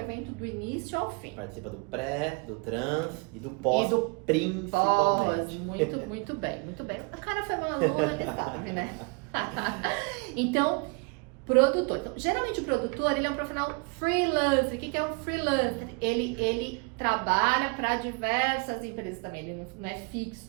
do início ao fim. Participa do pré, do trans e do pós, principalmente. Muito bem, muito bem. O cara foi maluco, ele sabe, né? Então, produtor. Então, geralmente o produtor, ele é um profissional freelancer. O que é um freelancer? Ele trabalha para diversas empresas também, ele não é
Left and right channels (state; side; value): quieter; left; 31.1 dB